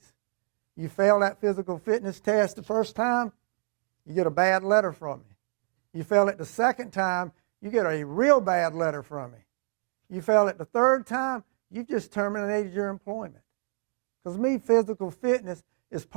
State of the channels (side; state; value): left; silent; digital silence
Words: You fail that physical fitness test the first time, you get a bad letter from me. You fail it the second time, you get a real bad letter from me. You fail it the third time, you just terminated your employment. Because me, physical fitness is